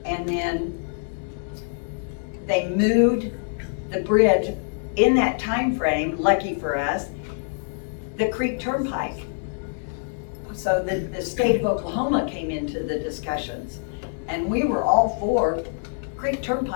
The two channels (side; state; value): right; silent; digital silence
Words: And then they moved the bridge in that time frame, lucky for us. the Creek Turnpike. So the state of Oklahoma came into the discussions, and we were all for Creek